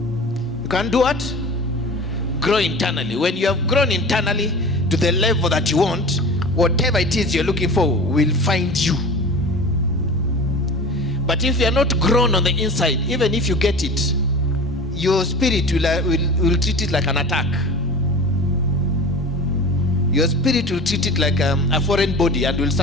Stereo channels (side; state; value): both; normal; correlation 0.36